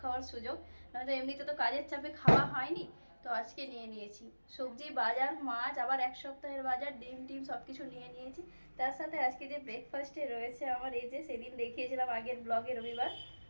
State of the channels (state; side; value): inverted; both; correlation -1.00